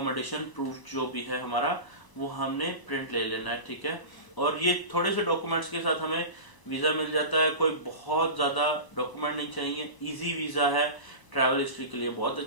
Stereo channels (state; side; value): late; right; 1.0 ms